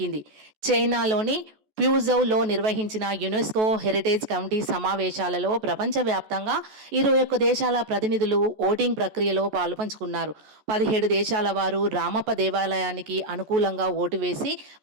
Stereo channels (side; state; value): left; late; 14 ms